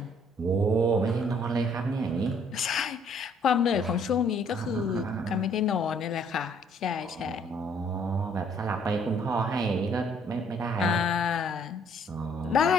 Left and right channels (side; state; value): both; normal; correlation 0.63